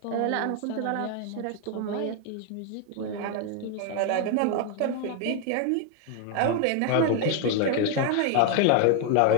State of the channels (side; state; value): both; different; correlation 0.01